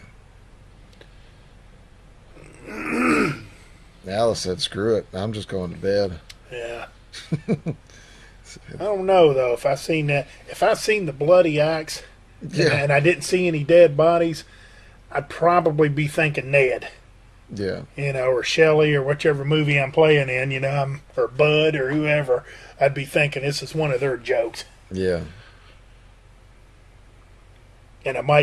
Yeah. Alice said, "Screw it. I'm just going to bed." Yeah. I don't know though. If I seen the bloody axe, and I didn't see any dead bodies, I'd probably be thinking Ned. Yeah. Or Shelley, or whichever movie I'm playing in, or Bud, or whoever. I'd be thinking this is one of their jokes. Yeah. And I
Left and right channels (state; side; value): identical; both; correlation 1.00